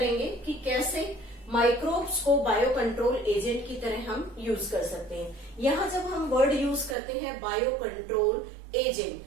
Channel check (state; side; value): drops out; left; at 7.0 s